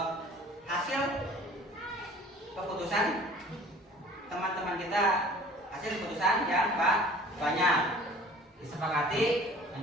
hasil keputusan teman-teman kita, hasil keputusan yang banyak disepakati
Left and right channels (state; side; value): normal; both; correlation 0.49